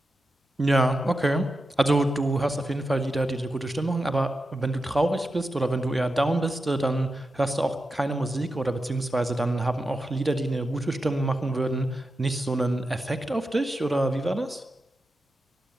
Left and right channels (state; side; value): normal; both; correlation 0.89